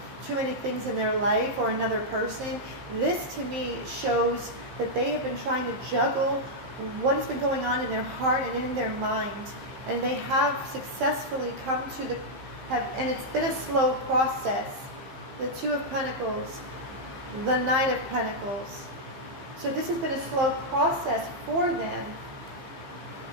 too many things in their life or another person. This to me shows that they have been trying to juggle what has been going on in their heart and in their mind. And they have successfully come to and it's been a slow process. The 2 of Pentacles, the 9 of Pentacles. So this has been a slow process for them.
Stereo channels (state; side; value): late; left; 15 ms